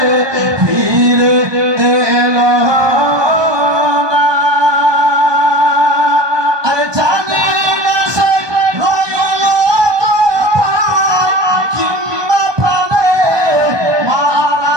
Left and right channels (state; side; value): late; left; 1.2 ms